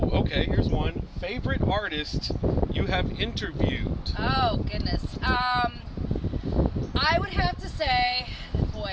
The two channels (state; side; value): identical; both; correlation 1.00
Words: okay. Here's one. Favorite artist you have interviewed? Oh goodness. I would have to say,